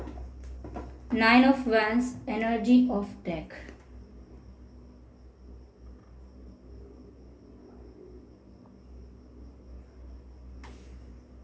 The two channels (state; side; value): identical; both; correlation 1.00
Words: nine of wands, energy of deck.